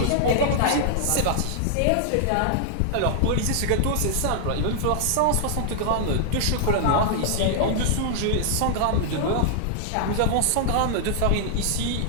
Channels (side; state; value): both; different; correlation -0.01